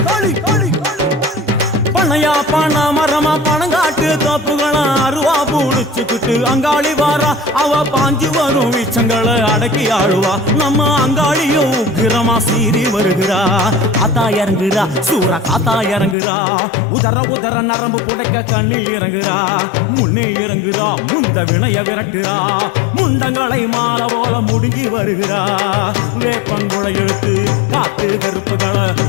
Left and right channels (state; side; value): drops out; right; at 16.2 s